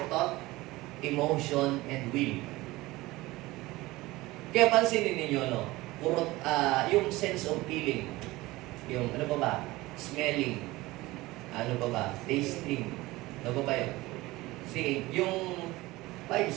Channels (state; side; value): quieter; left; 19.6 dB